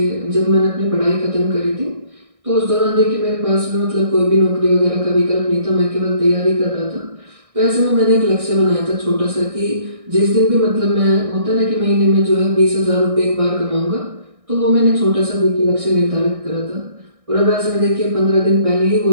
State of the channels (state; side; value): late; left; 1.6 ms